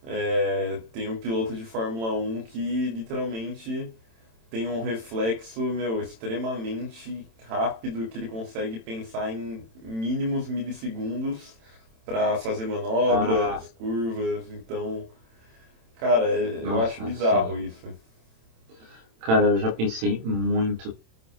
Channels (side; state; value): left; late; 27 ms